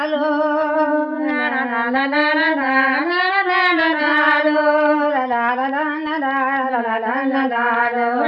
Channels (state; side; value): identical; both; correlation 1.00